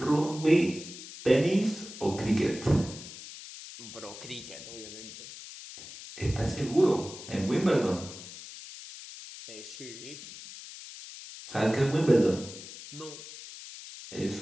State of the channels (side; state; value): left; noise; hiss, 13 dB below the sound